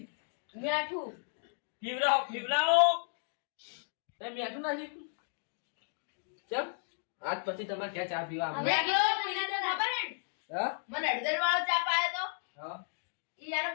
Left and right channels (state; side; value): silent; right; digital silence